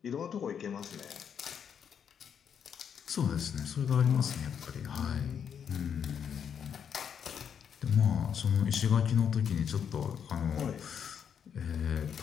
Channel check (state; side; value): quieter; right; 7.8 dB